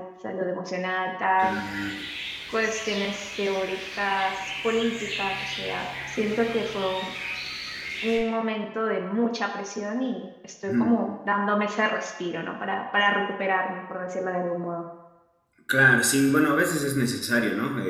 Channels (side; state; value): both; identical; correlation 1.00